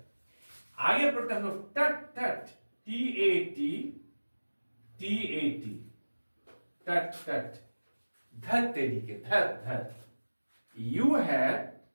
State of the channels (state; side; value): inverted; both; correlation -1.00